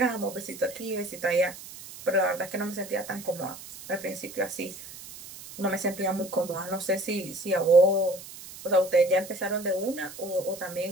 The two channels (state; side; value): noise; right; hiss, 15 dB below the sound